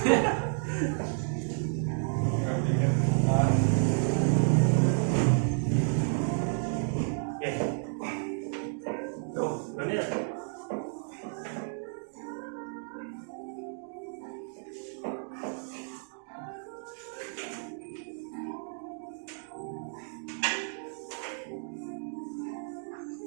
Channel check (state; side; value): silent; left; 57 dB below the other